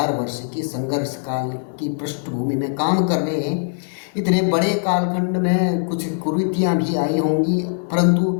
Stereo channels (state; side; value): silent; right; digital silence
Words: वर्ष की संघर्ष काल की पृष्ठभूमि में काम कर रहे हैं। इतने बड़े कालखंड में कुछ कुरीतियाँ भी आई होंगी,